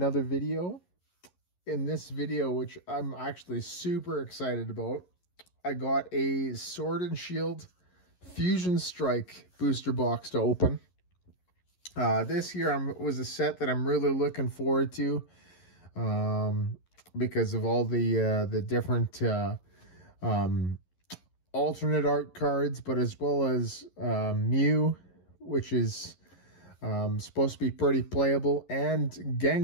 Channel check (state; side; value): late; right; 11 ms